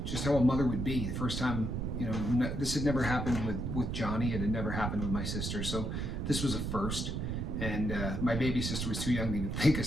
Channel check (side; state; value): right; noise; rumble, 2 dB below the sound